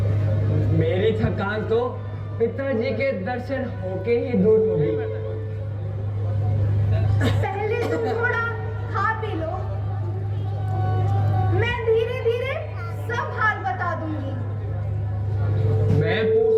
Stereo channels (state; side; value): identical; both; correlation 1.00